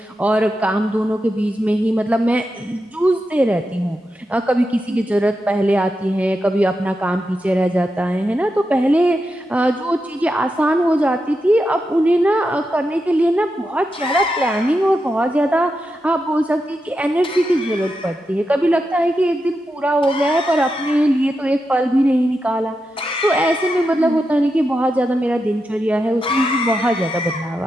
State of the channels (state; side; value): normal; both; correlation 0.87